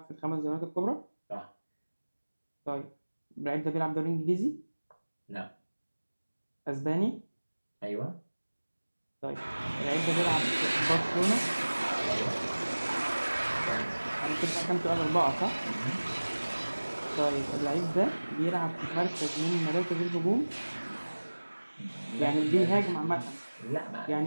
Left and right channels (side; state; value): both; inverted; correlation -1.00